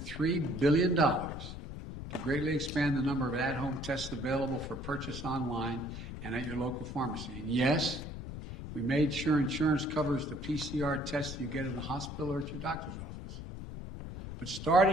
$3 billion to greatly expand the number of at-home tests available for purchase online and at your local pharmacy. And yes, we made sure insurance covers the PCR tests you get in the hospital or at your doctor's office. But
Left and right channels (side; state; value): left; noise; rumble, 8 dB below the sound